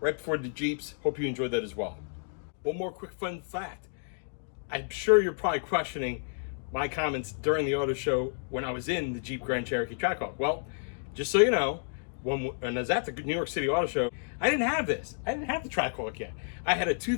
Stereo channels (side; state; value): right; silent; digital silence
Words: before the Jeeps. Hope you enjoyed that as well. One more quick fun fact. I'm sure you're probably questioning my comments during the auto show when I was in the Jeep Grand Cherokee TRACKHAWK. Well, just so you know, when I was at the New York City Auto Show, I didn't have this. I didn't have the TRACKHAWK yet. I had a